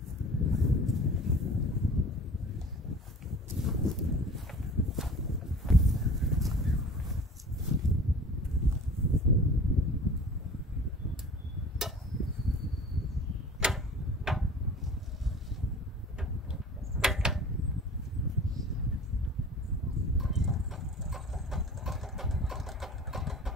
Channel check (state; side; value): normal; both; correlation 0.43